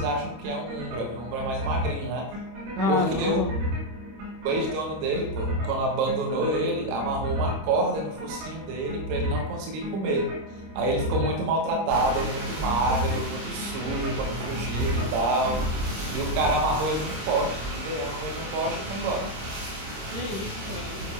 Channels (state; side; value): late; left; 26 ms